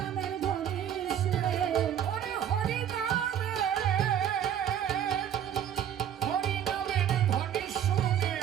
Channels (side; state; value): left; quieter; 9.6 dB